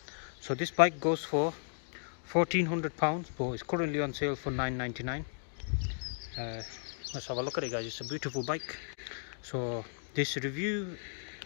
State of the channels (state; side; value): silent; right; digital silence